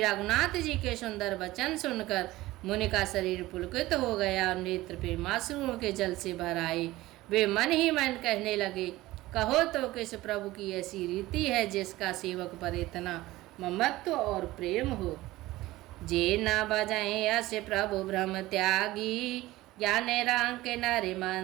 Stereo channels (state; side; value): quieter; left; 17.8 dB